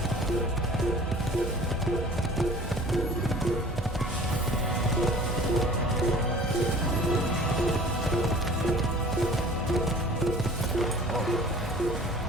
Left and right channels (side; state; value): both; normal; correlation 0.46